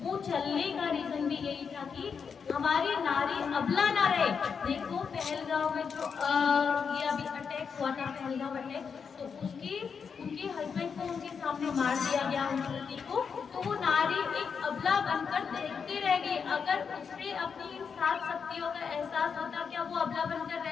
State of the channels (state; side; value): quieter; right; 6.2 dB